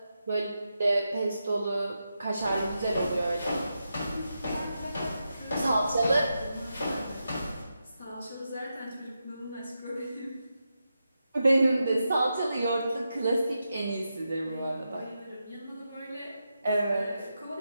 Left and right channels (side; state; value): both; inverted; correlation -0.87